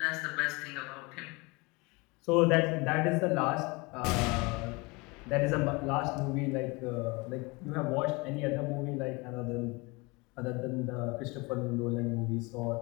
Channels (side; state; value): right; quieter; 26.4 dB